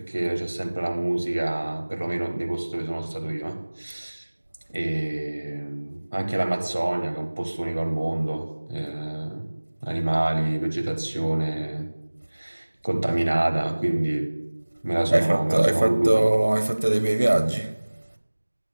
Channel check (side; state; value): both; inverted; correlation -1.00